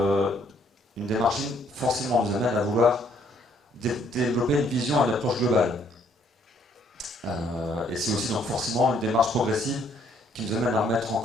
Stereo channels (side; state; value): both; normal; correlation 0.66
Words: une démarche ligne forcément nous amène à vouloir développer une vision et une approche globale. Et c'est aussi donc forcément une démarche progressive qui nous amène à remettre en